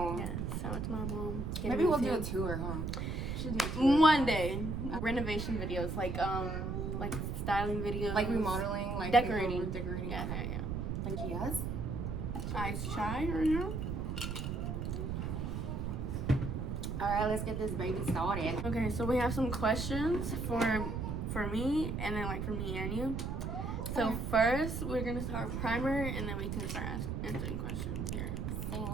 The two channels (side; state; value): right; noise; rumble, 2 dB below the sound